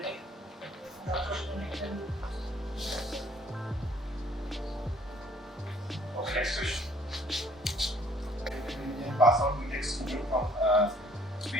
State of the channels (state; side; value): normal; both; correlation 0.60